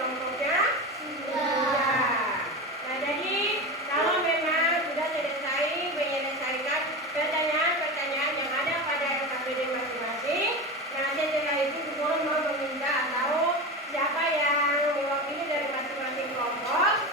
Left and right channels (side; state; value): both; normal; correlation 0.24